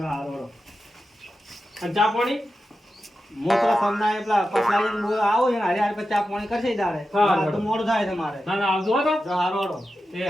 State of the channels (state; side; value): normal; both; correlation 0.91